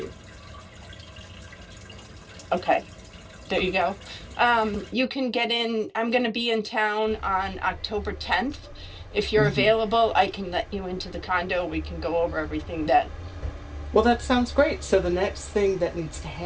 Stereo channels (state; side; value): identical; both; correlation 1.00